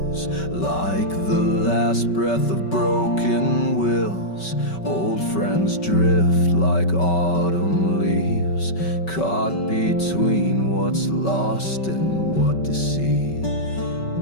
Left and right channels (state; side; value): late; right; 5.3 ms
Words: like the last breath of broken wills. Old friends drift like autumn leaves, caught between what's lost and what deceived.